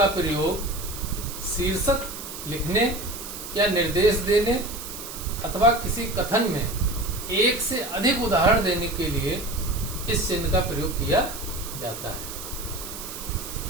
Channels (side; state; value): right; noise; hiss, 10 dB below the sound